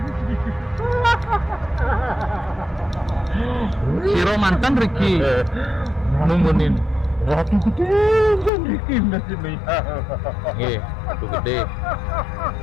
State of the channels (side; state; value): right; drops out; at 8.5 s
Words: Siro mantan Riki numunin. Ratu gede kan Riki nasibnya. Nggih, ratu gede.